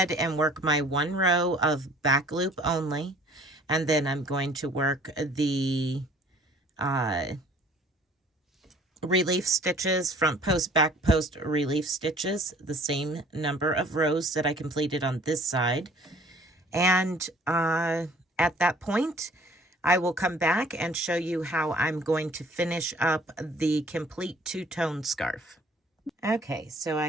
and work my 1 row of back loop only, and then I'm going to work the relief stitches, front post, back post relief stitches, the same number of rows that I completed on this side. And at that point, I will come back and show you how I'm going to finish up the complete two-tone scarf. Okay, so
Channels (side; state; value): both; normal; correlation 0.53